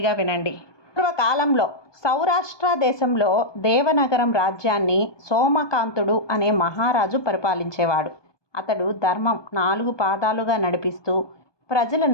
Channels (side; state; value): right; late; 1.2 ms